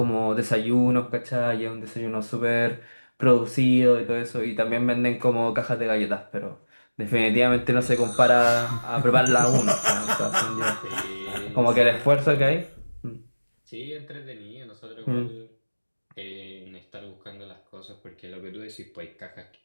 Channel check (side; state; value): both; inverted; correlation -1.00